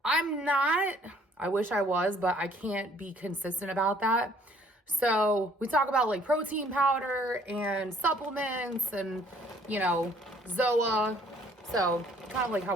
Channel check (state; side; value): normal; both; correlation 0.60